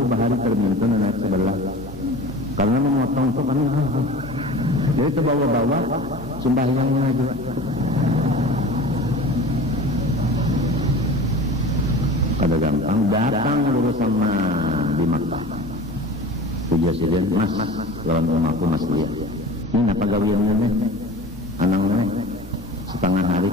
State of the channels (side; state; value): both; normal; correlation 0.37